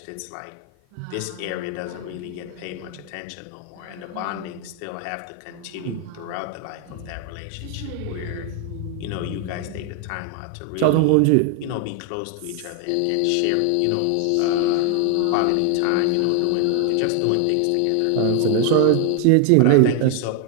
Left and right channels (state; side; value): different; both; correlation 0.00